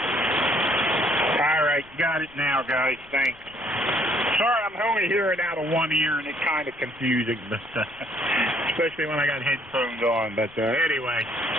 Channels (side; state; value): left; noise; rumble, 26 dB below the sound